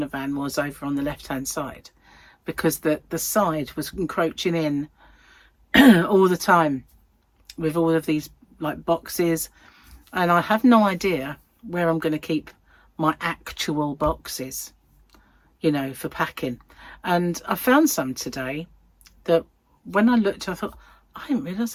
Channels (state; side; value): identical; both; correlation 1.00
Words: van was over on the left hand side, because the side was encroaching in all the time with all of these like boxes, and I have no idea where I'm going to keep my actual boxes, you know, for packing. And I found some today that when I looked, I thought, I didn't